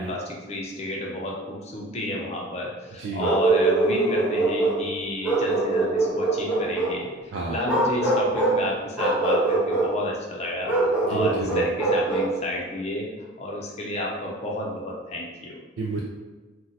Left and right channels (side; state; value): both; normal; correlation 0.41